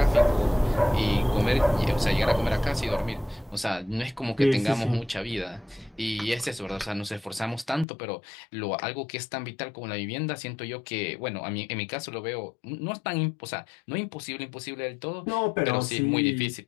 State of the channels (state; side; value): drops out; right; at 7.9 s